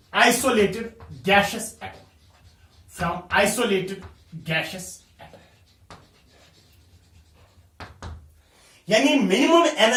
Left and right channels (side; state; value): both; identical; correlation 1.00